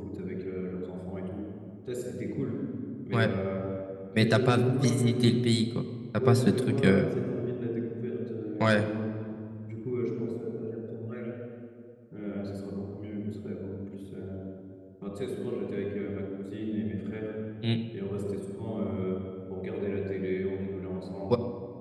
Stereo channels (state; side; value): identical; both; correlation 1.00